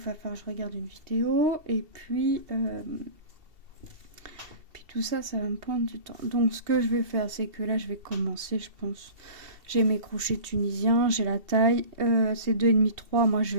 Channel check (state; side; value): late; left; 2.7 ms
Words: falloir que je regarde une vidéo et puis tout ça va me prendre du temps. Donc ce que je vais faire c'est que là je vais commencer je pense. J'ai mes crochets tunisiens, j'ai la taille, c'est 2,5 3, moi je